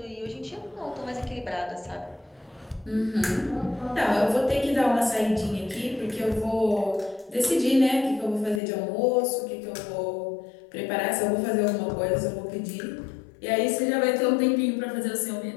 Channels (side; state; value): right; drops out; at 8.6 s